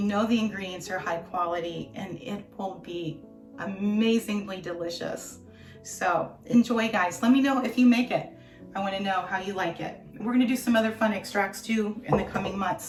the ingredients are high quality, and it will be amazingly delicious. So enjoy, guys. Let me know if you make it. I want to know how you like it. We're going to do some other fun extracts too in the coming months,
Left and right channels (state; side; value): identical; both; correlation 1.00